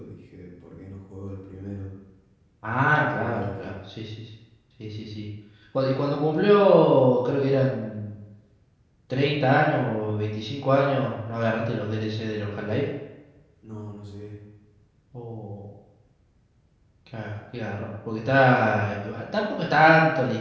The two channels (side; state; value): both; identical; correlation 1.00